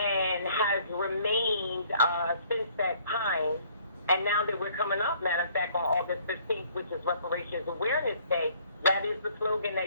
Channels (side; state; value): both; inverted; correlation -0.60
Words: has remained since that time. And now that we're coming up, matter of fact, on August 15th, which is Reparations Awareness Day, that is the slogan